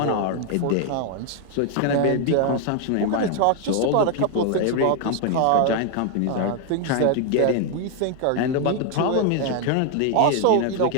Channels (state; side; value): different; both; correlation 0.01